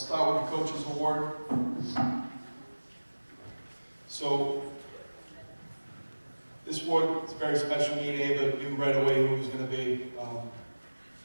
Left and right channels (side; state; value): both; inverted; correlation -1.00